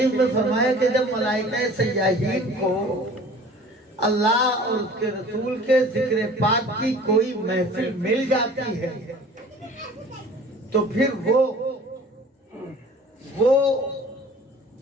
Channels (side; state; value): both; normal; correlation 0.46